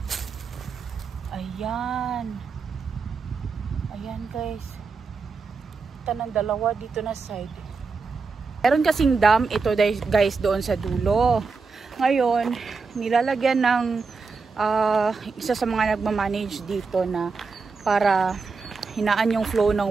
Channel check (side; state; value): left; quieter; 4.7 dB